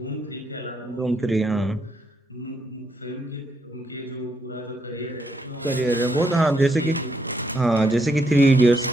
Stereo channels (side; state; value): both; normal; correlation 0.77